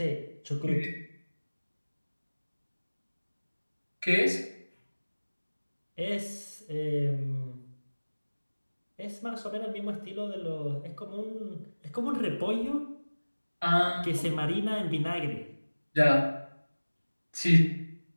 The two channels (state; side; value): inverted; both; correlation -1.00